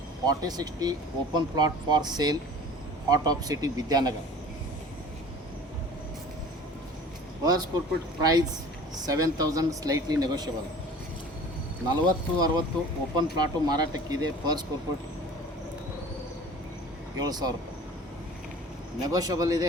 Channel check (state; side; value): normal; both; correlation 0.43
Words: 40-60 open plot for sale, heart of city Vidyanagara. Per square feet price 7,000, slightly negotiable. 40-60 open plot ಮಾರಾಟಕ್ಕಿದೆ. ಪರ್ ಸ್ಕ್ವೇರ್ ಫೀಟ್ 7,000 ರೂಪಾಯಿ. ನೆಗೋಷಿಯಬಲ್ ಇದೆ,